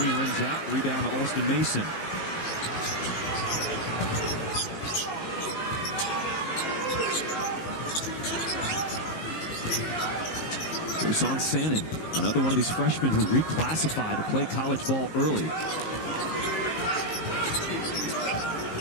rims out. Rebound to Alston Mason. Dusan Sannon, another one of these freshmen who reclassified to play college ball early.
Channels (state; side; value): late; right; 19 ms